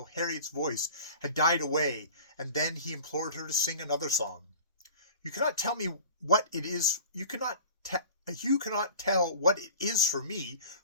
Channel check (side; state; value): both; inverted; correlation -0.42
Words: Harriet's voice had died away, and then he implored her to sing another song. "You cannot tell me what it is. You cannot tell what it is for me,